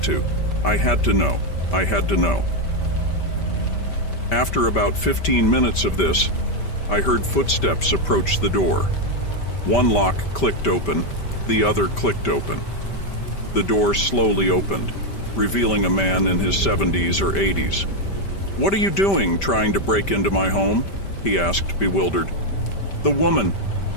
to. I had to know. I had to know. After about 15 minutes of this, I heard footsteps approach the door. One lock clicked open, the other clicked open. The door slowly opened, revealing a man in his 70s or 80s. "What are you doing, trying to break into my home?" he asked, bewildered. "The woman.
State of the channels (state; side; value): late; right; 5.1 ms